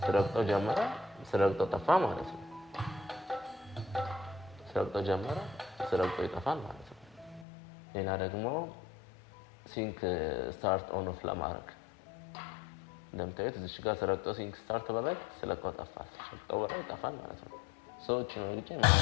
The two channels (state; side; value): drops out; right; at 7.5 s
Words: ስረግጠው ጀመረ፣ ስረግጠው ጠፋ ማለት ነው። ስረግጠው ጀመረ፣ ስረግጠው ይጠፋል ማለት ነው። ሌላ ደግሞ ሲንክ ስታርት ኦን ኦፍ ለማድረግ እንደምታዩት እዚህ ጋር ስረግጠው ሲንክ ስታርት በላይ ስለቀው ጠፋ፣ ስለቀው በላይ ይጠፋል ማለት ነው። ሰዎች ነው እንጂ